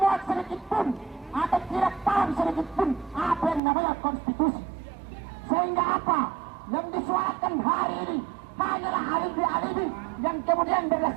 sedikit pun atau tidak paham sedikit pun apa yang namanya konstitusi. Sehingga apa yang disuarakan hari ini hanyalah alibi-alibi yang kemudian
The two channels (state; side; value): drops out; left; at 3.6 s